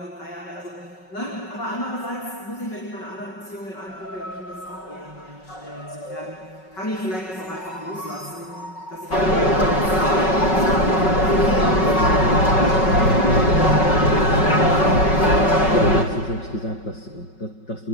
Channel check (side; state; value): right; late; 5.3 ms